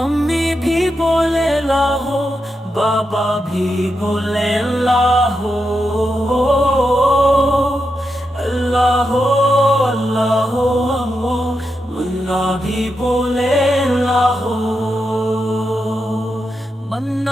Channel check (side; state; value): both; normal; correlation 0.86